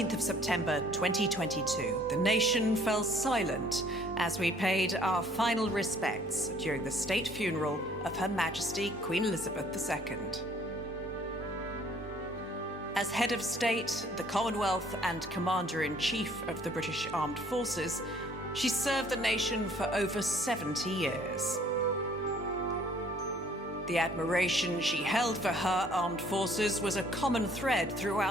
of September 2022, the nation fell silent as we paid our final respects during the state funeral of Her Majesty Queen Elizabeth II. As head of state, the Commonwealth and Commander-in-Chief of the British Armed Forces, she served the nation for over 70 years. The admiration she held for her armed forces was a common thread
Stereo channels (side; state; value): both; normal; correlation 0.59